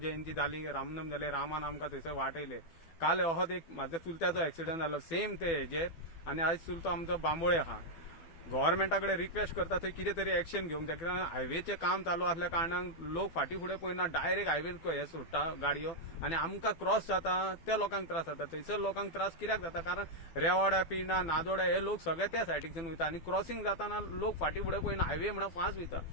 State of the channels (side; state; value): right; late; 12 ms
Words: जाली, रामनम जाले, रामान आमकां थंयसर वाटयले। काल अहोच एक म्हाज्या चुलत्याचो ॲक्सिडंट जालो सेम ते हेजेर, आनी आयज चुलतो आमचो बांबोळे आहा। गव्हर्मेंटा कडेन रिक्वेस्ट करता थंय कितें तरी एक्शन घेवंक जाय, कित्याक हायवेचें काम चालू आसल्या कारणान लोक फाटीं फुडें पळयना, डायरेक्ट हायवे हे सोडटा गाडयो, आनी आमकां क्रॉस जाता त्या लोकांक त्रास जाता। थंयसर लोकांक त्रास कित्याक जाता, कारण रेवाड्या पिना नादोड्या हे लोक सगळे त्या सायडीच्यान वयता, आनी क्रॉसिंग जाताना लोक फाटीं फुडें पळयना, हायवे म्हणून फास्ट वयता।